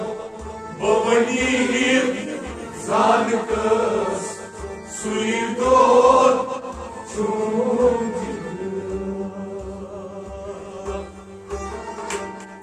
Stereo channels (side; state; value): both; identical; correlation 1.00